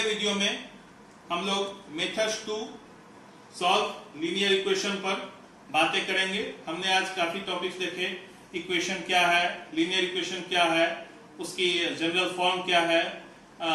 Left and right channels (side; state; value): both; identical; correlation 1.00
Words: वीडियो में हम लोग methods to solve linear equation पर बातें करेंगे। हमने आज काफी टॉपिक्स देखे, इक्वेशन क्या है, लीनियर इक्वेशन क्या है, उसकी जनरल फॉर्म क्या है,